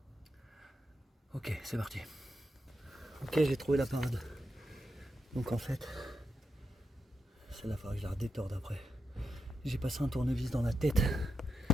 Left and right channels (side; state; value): both; normal; correlation 0.86